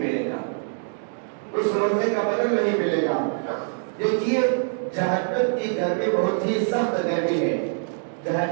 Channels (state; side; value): silent; left; digital silence